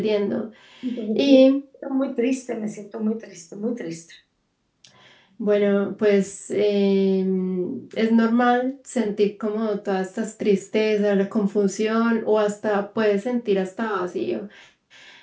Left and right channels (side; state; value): both; identical; correlation 1.00